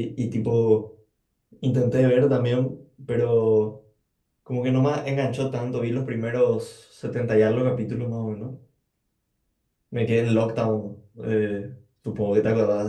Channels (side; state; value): both; identical; correlation 1.00